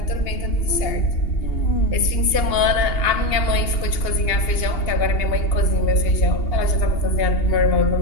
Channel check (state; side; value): late; right; 2.8 ms